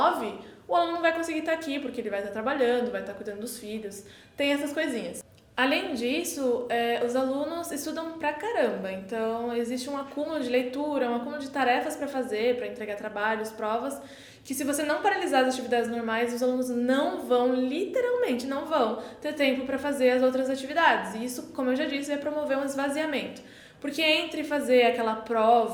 o aluno não vai conseguir estar aqui, porque ele vai estar trabalhando, vai estar cuidando dos filhos, tem essas coisinhas. Além disso, os alunos estudam pra caramba, então existe um acúmulo de leitura, um acúmulo de tarefas para fazer, para entregar trabalhos, provas, que se você não paralisar as atividades normais, os alunos literalmente não vão ter tempo para fazer as outras atividades. E isso, como eu já disse, vai promover um esvaziamento. Porque entre fazer aquela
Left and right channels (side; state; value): both; identical; correlation 1.00